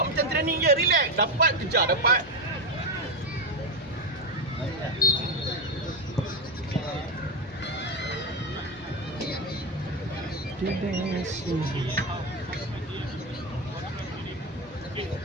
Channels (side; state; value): both; normal; correlation 0.12